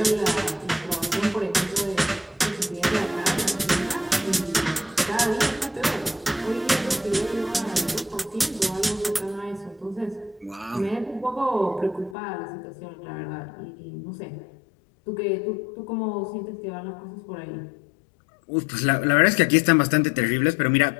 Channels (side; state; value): right; drops out; at 12.2 s